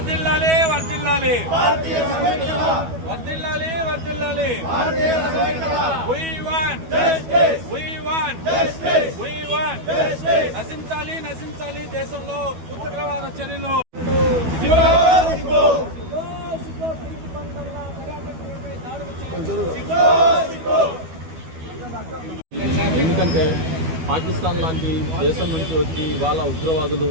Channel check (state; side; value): late; left; 12 ms